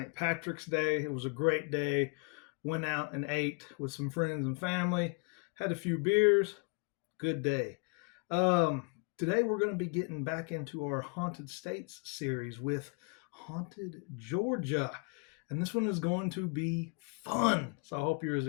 Patrick's Day. It was a great day. Went out and ate with some friends and family. Had a few beers. Good day. Today we're going to be getting back into our Haunted States series with Haunted Georgia. And this one is going to be fun. So I hope you're as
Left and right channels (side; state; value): right; quieter; 35.8 dB